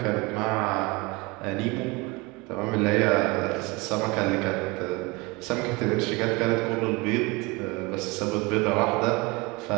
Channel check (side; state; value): left; quieter; 24.8 dB